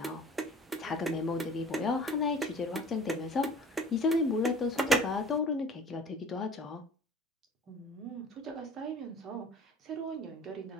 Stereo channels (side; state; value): both; normal; correlation 0.46